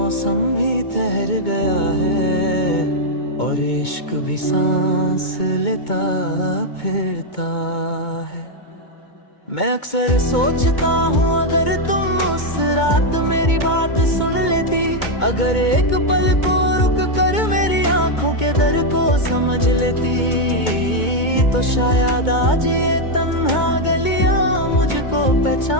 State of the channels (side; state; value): right; late; 2.2 ms